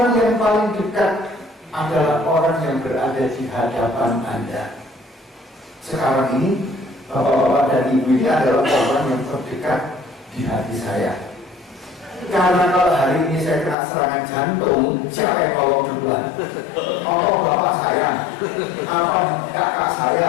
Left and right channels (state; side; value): drops out; right; at 13.8 s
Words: yang paling dekat adalah orang yang berada di hadapan Anda. Sekarang ini, bapak-bapak dan ibu ini adalah orang yang terdekat di hati saya. Karena kalau hari ini saya kena serangan jantung, siapa yang tolong duluan? Oh, bapak saya, apa kakak